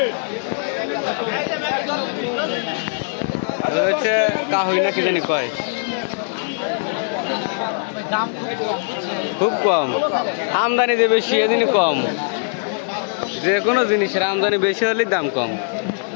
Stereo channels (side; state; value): right; silent; 65 dB below the other